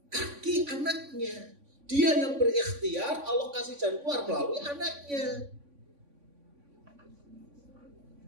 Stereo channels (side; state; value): left; late; 3.5 ms